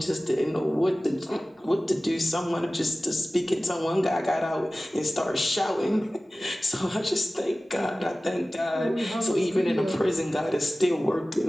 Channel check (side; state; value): both; normal; correlation 0.97